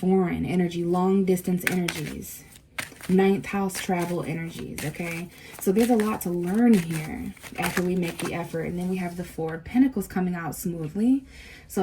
energy, long distance energies, ninth house travel energies. Okay, so there's a lot to learn here after we make the effort. And then we have the Four of Pentacles coming out smoothly.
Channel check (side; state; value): both; identical; correlation 1.00